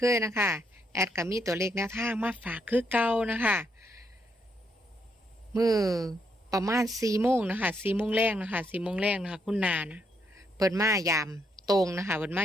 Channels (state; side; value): normal; both; correlation 0.76